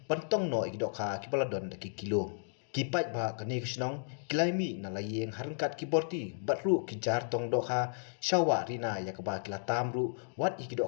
pentong no ikidok ha kibaladon daki kilo kipai ba kani kisnong kilaimi na layeng harengkat kiborti batru kijar tong dok ha shawa rina yakaba kila tamru wat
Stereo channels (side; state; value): right; silent; digital silence